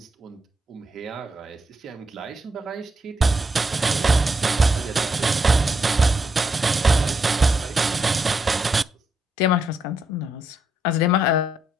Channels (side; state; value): both; normal; correlation 0.79